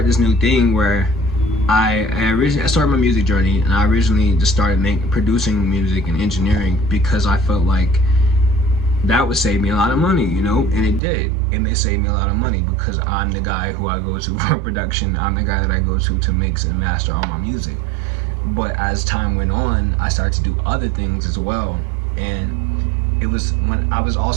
this new thing where I started my music journey, and I originally just started producing music and engineering because I felt like that would save me a lot of money, you know, and it did. It may save me a lot of money because I'm the guy who I go to for production. I'm the guy that I go to mix and master all my music. But as time went on, I started to do other things as well, and it was when I was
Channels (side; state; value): left; drops out; at 11.0 s